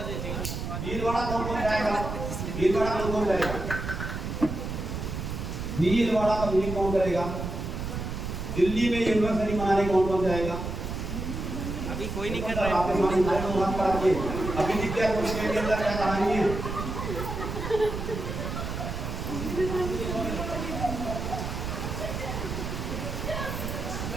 भीलवाड़ा कौन जाएगा? भीलवाड़ा कौन जाएगा? भीलवाड़ा का मीटिंग कौन करेगा? दिल्ली में यूनिवर्सिटी मनाने कौन जाएगा? अभी कोई नहीं कर रहा है। अभी दिख गया कुछ के अंदर क्या कहानी है?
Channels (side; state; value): right; noise; rumble, 5 dB below the sound